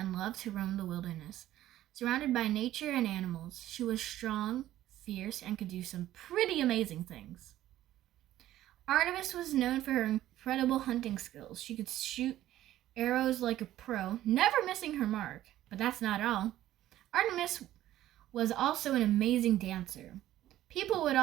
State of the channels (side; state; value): left; quieter; 13.7 dB